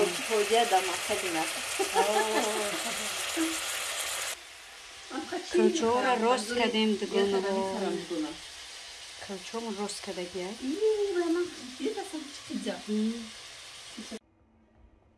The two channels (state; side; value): identical; both; correlation 1.00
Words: پوجه دام خیلی نه. کلچه را روست کردیم دیگونه رو. کلچه رو روست کرده گیاه. یه دفعه چیزا.